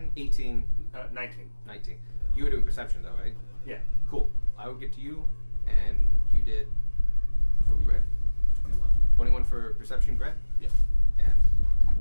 18, 19. 19. You were doing perception though, right? Yeah. Cool. I will get to you, and you did for bread. 21. 21 for perception bread? Yeah. And I'm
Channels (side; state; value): both; inverted; correlation -1.00